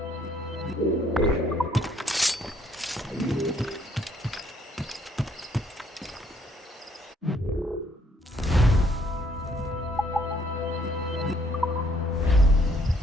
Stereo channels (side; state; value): both; normal; correlation 0.66